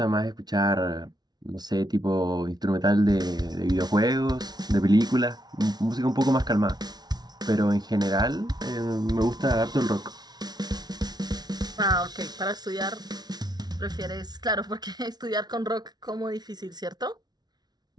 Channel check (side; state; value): left; late; 0.19 ms